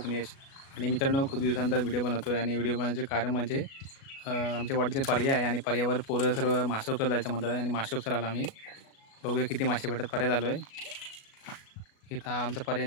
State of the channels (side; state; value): right; late; 37 ms